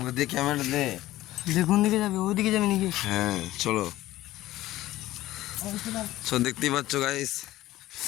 দে ক্যামেরা দে। কোন দিকে যাবে? ওইদিকে যাবে নাকি? হ্যাঁ চলো। সো দেখতেই পাচ্ছ গাইস,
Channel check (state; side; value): quieter; right; 15.8 dB